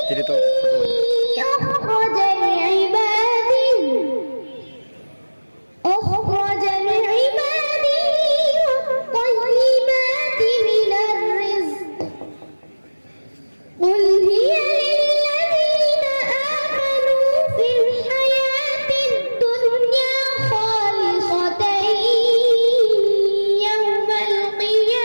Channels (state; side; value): inverted; both; correlation -1.00